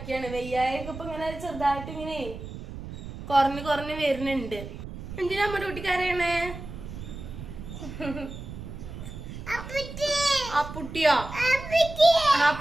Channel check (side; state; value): right; noise; rumble, 11 dB below the sound